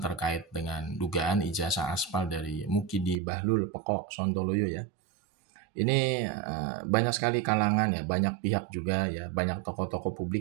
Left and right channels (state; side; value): drops out; left; at 3.2 s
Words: dengan dugaan ijazah aspal dari Mukidi Bahlul Pekok Sontoloyo ya. Ini banyak sekali kalangan ya, banyak pihak juga ya, banyak tokoh-tokoh